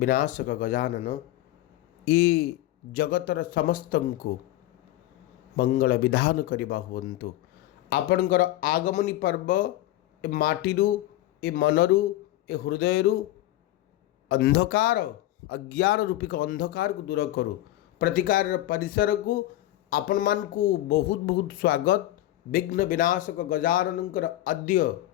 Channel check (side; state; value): right; quieter; 15.1 dB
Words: गजानन, ये जगतर समस्तंको मंगल विधान करवा हुंतु। आपणकर आगमनी पर्व ए माटीरू ए मनरू ए हृदयरू अंधकार अज्ञान रूपिक अंधकार को दूर करू। प्रतिकार परिसर को आपण मान को बहुत बहुत स्वागत। विघ्न विनाशक गजाननकर अद्य